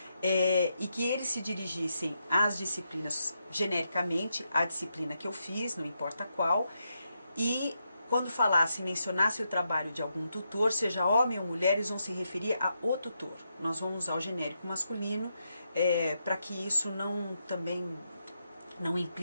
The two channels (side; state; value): both; inverted; correlation -0.83